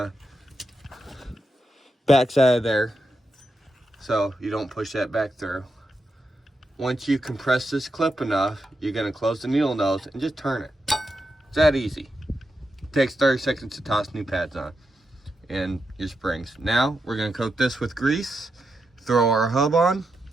back side of there, so you don't push that back through. Once you compress this clip enough, you're going to close the needle nose and just turn it. It's that easy. It takes 30 seconds to toss new pads on and your springs. Now we're going to coat this with grease, throw our hub on,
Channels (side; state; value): both; normal; correlation 0.85